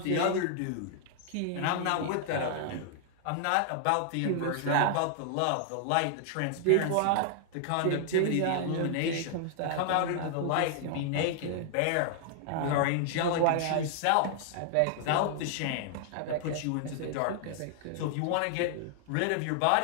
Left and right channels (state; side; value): different; both; correlation -0.01